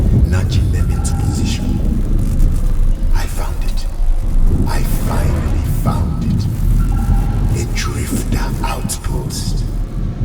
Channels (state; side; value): identical; both; correlation 1.00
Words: nudging them into position, I found it. I finally found it. A drifter outpost.